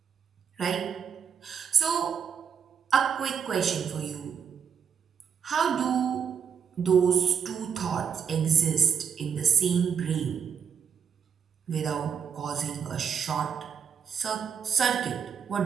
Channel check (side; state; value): left; quieter; 7.1 dB